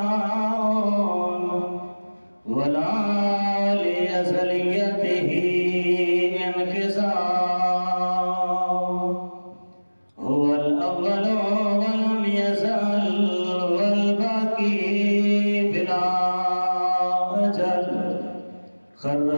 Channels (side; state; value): both; inverted; correlation -1.00